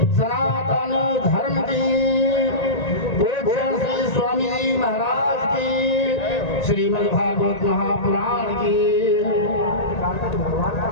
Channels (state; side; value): late; right; 1.9 ms